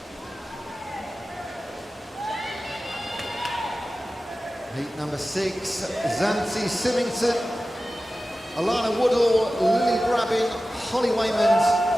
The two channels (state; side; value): normal; both; correlation 0.95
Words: Heat number 6, Zanti Symington, Alana Woodall, Lily Brabin, Holly